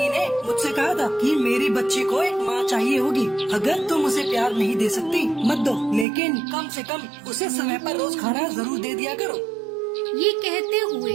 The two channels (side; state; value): left; drops out; at 6.1 s